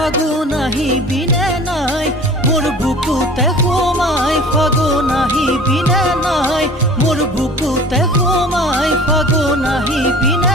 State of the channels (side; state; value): both; normal; correlation 0.43